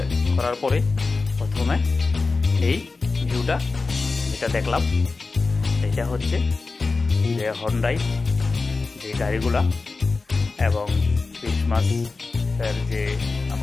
করার পরে প্রথমে এই ভিউটা যেটা দেখলাম, এটা হচ্ছে যে হন্ডাই যে গাড়িগুলা এবং ক্রিসমাসের যে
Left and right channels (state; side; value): quieter; right; 3.9 dB